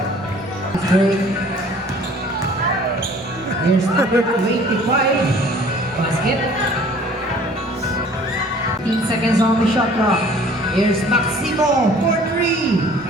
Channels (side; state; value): both; normal; correlation 0.52